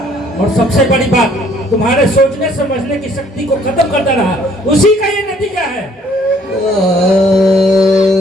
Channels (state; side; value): normal; both; correlation 0.61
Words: और सबसे बड़ी बात तुम्हारे सोचने समझने की शक्ति को खत्म करता रहा। उसी का ये नतीजा है।